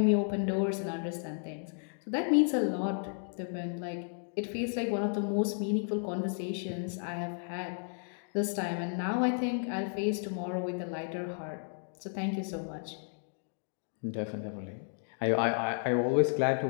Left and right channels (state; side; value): silent; right; 56 dB below the other